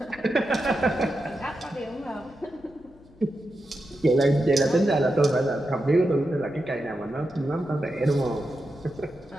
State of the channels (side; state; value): left; noise; hum, 24 dB below the sound